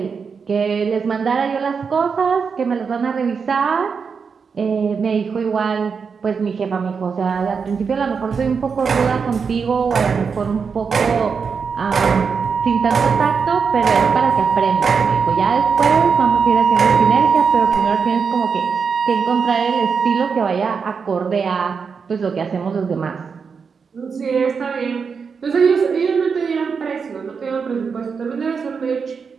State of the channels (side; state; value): left; quieter; 5.8 dB